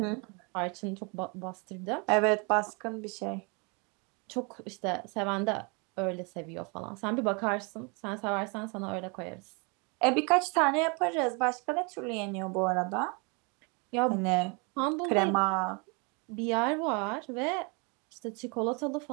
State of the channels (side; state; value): left; quieter; 32.0 dB